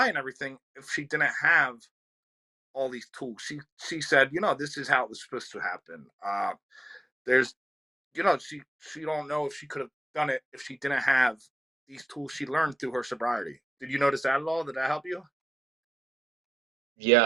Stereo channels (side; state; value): both; normal; correlation 0.87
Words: and everything if she didn't have all these tools. She said, this is how it was supposed to happen. There's, she don't know if she could have done it if she didn't have these tools she learned through her sobriety. Did you notice that at all? Did that help you?